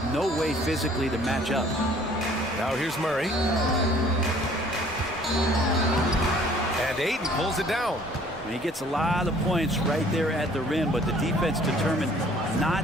no way physically to match up. Now here's Murray. And Ayton pulls it down. And he gets a lot of points right there at the rim, but the defense determined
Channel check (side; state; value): both; normal; correlation 0.56